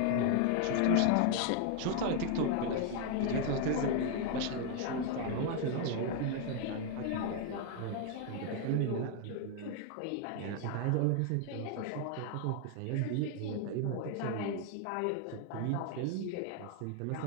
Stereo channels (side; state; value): both; different; correlation 0.00